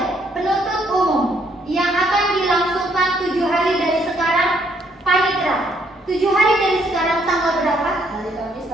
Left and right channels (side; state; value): both; normal; correlation 0.69